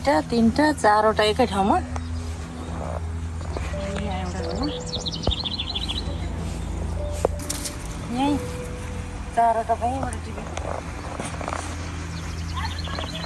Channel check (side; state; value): both; identical; correlation 1.00